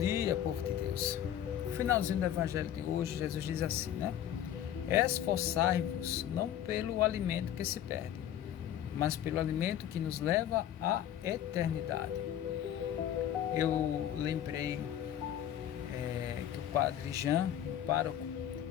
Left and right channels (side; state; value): right; quieter; 10.7 dB